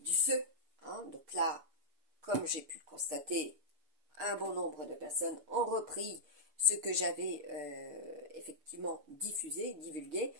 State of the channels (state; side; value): late; left; 6.8 ms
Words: du feu. Hein. Donc là, comme j'ai pu le constater, un bon nombre de personnes ont repris ce que j'avais effectivement diffusé, divulgué,